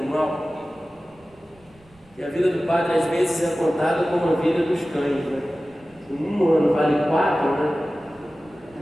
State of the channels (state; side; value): noise; right; rumble, 30 dB below the sound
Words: mal, que a vida do padre às vezes é contada como a vida dos cães, né? Um ano vale 4, né?